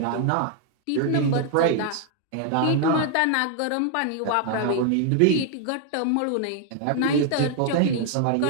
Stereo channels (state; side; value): different; both; correlation 0.00